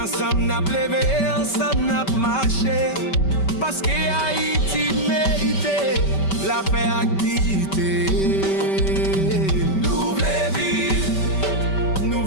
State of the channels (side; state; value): right; late; 5.2 ms